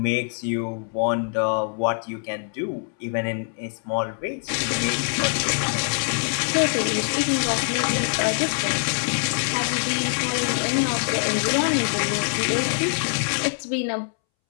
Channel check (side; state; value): right; silent; 63 dB below the other